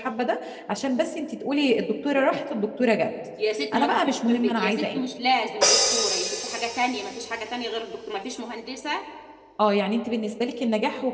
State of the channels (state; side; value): identical; both; correlation 1.00